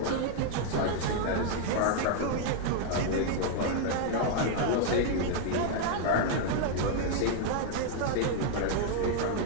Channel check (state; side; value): different; both; correlation 0.00